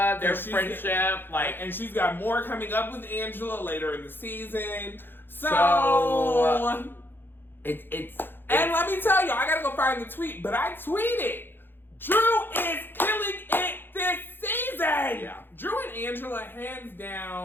their friendship, and she's got more coming up with Angela later in the season. So it's and let me tell you, I gotta go find the tweet, but I tweeted, Drew is killing it this season. Yeah. Drew and Angela, hands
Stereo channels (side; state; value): right; late; 0.10 ms